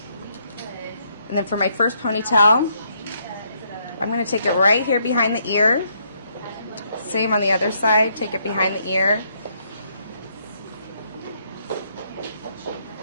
And then for my first ponytail, I'm going to take it right here behind the ear. Same on the other side, take it behind the ear.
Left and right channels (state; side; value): inverted; both; correlation -0.72